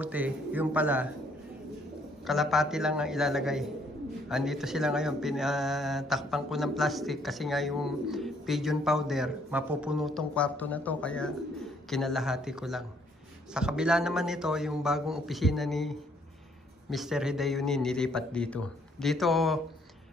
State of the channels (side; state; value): both; normal; correlation 0.66